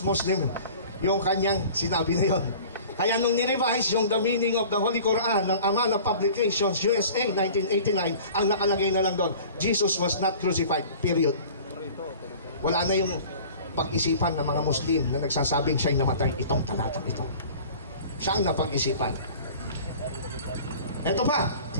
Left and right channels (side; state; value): both; inverted; correlation -0.44